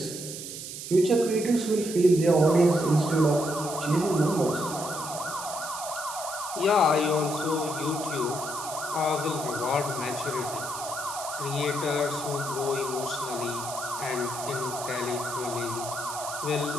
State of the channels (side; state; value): right; noise; hiss, 9 dB below the sound